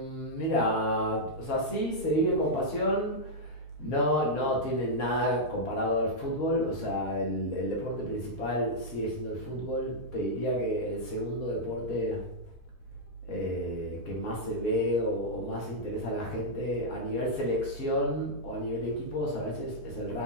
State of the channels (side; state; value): right; late; 5.1 ms